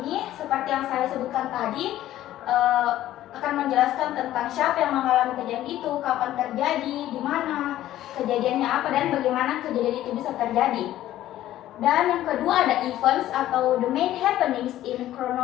seperti yang saya sebutkan tadi, akan menjelaskan tentang siapa yang mengalami kejadian itu, kapan terjadi, di mana, kejadiannya apa, dan bagaimana kejadian itu bisa terjadi. Dan yang kedua ada events atau the main happenings in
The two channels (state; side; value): quieter; right; 13.6 dB